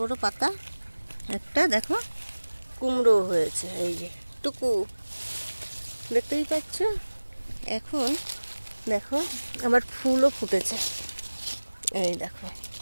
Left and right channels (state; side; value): inverted; both; correlation -1.00